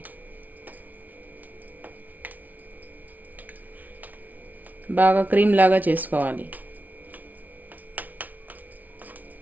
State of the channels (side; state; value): left; late; 0.077 ms